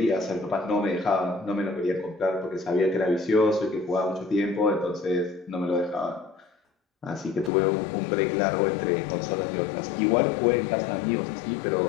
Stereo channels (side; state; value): right; drops out; at 7.5 s